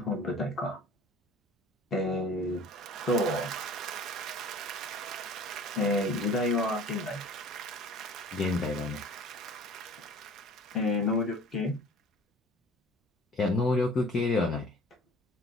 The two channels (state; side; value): normal; both; correlation 0.46